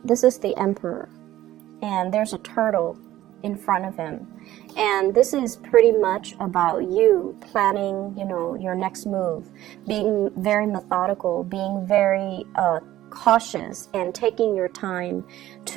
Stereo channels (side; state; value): left; quieter; 14.2 dB